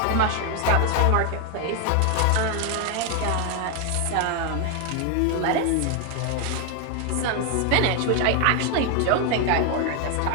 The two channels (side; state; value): both; different; correlation 0.01